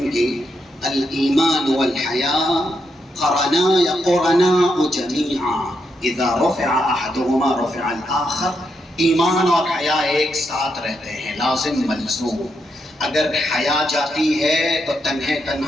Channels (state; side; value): normal; both; correlation 0.81